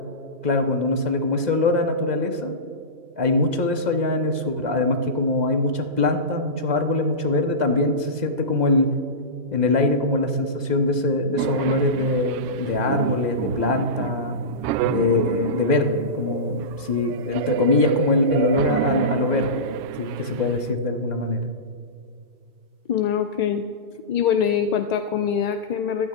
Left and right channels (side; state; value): left; late; 2.0 ms